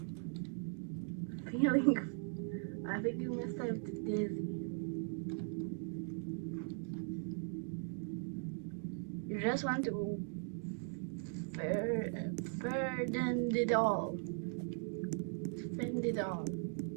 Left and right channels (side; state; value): left; silent; 51 dB below the other